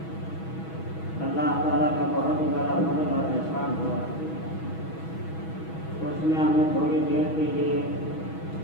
تعالیٰ کا بہت ہی بڑا فضل اور احسان ہوا، اس نے ہمیں تھوڑی دیر کے لیے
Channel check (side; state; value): right; late; 6.2 ms